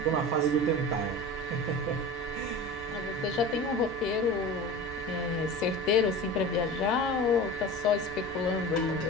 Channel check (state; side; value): noise; right; hum, 20 dB below the sound